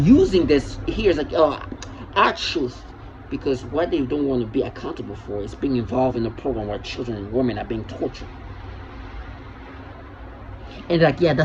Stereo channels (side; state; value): both; identical; correlation 1.00